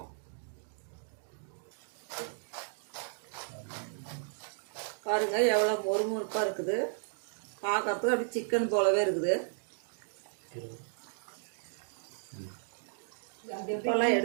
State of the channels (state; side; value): silent; left; digital silence